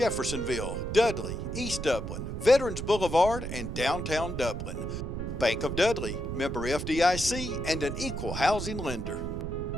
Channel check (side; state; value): right; noise; rumble, 5 dB below the sound